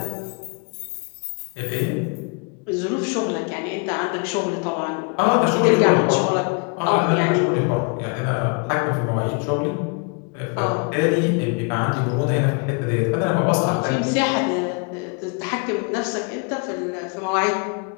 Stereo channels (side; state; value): right; quieter; 35.0 dB